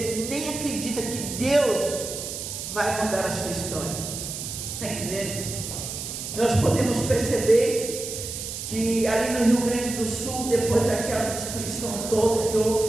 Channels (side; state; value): right; noise; hiss, 7 dB below the sound